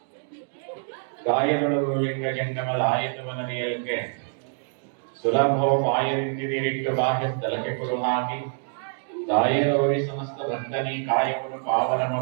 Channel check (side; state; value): left; silent; 59 dB below the other